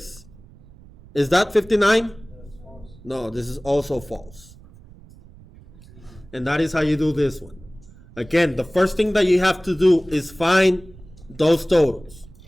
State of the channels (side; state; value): right; noise; rumble, 22 dB below the sound